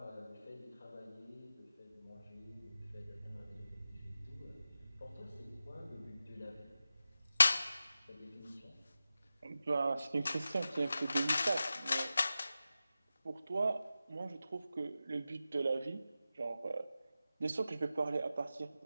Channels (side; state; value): both; inverted; correlation -0.93